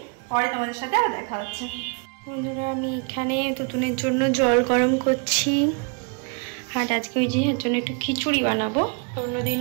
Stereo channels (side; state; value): left; quieter; 37.3 dB